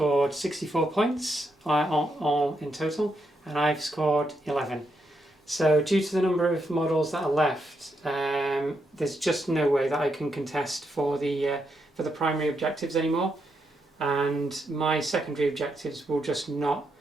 64 points all in total, and I've scored 11. So due to the number of models that are left, there's just no way that I can contest for the primary objectives anymore, and my secondary objectives will just not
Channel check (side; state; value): both; normal; correlation 0.81